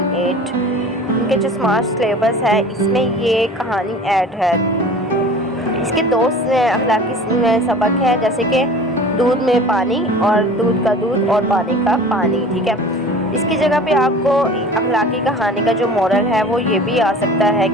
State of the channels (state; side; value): normal; both; correlation 0.41